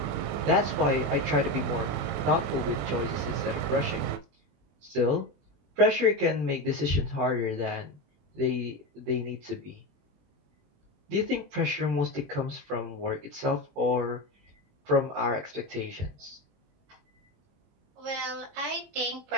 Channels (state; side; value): late; left; 20 ms